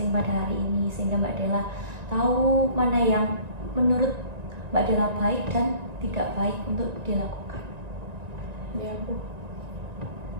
pada hari ini, sehingga Mbak Della tahu mana yang menurut Mbak Della baik dan tidak baik untuk dilakukan. Iya Bu.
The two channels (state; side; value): late; left; 1.9 ms